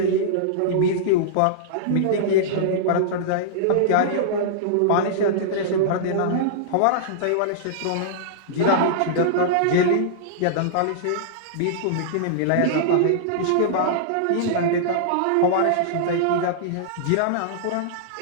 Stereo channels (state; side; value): different; both; correlation -0.02